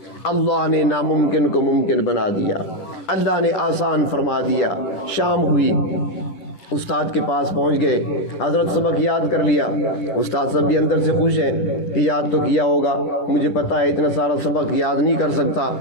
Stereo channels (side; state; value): right; late; 11 ms